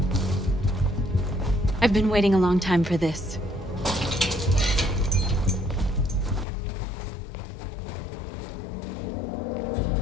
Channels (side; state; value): right; drops out; at 6.5 s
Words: I've been waiting a long time for this.